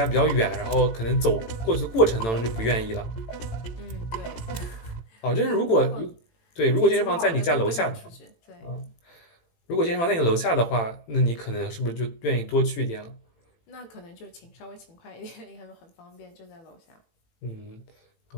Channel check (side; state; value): right; late; 18 ms